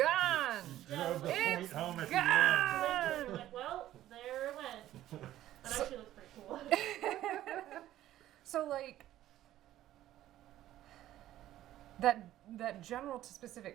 drove the It's point home at gone! You're like, well, there it went. That So- actually looks pretty cool. So, like, that general to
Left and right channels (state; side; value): quieter; left; 13.5 dB